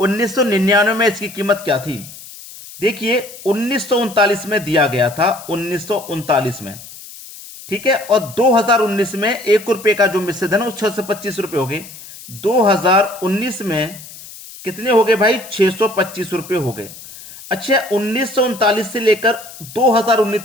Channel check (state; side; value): noise; left; hiss, 16 dB below the sound